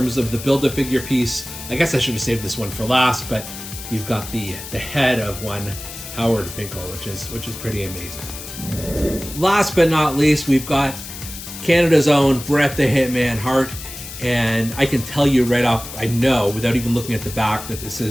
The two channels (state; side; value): noise; left; hiss, 11 dB below the sound